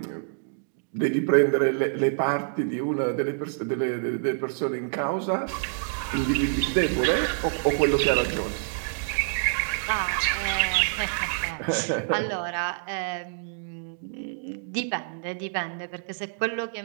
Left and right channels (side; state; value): left; silent; digital silence